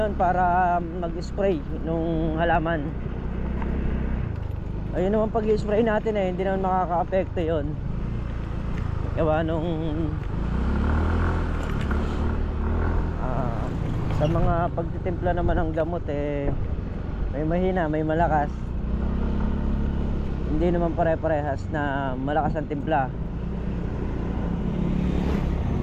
para mag-spray nung halaman. Ayun naman, pag-spray natin hindi naman makaka-apekto yun. Gawa nung sa mga pagtitimpla naman ng gamot may mahina, may malakas. Hindi naman pare-parehas na malakas ang timpla.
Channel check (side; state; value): both; identical; correlation 1.00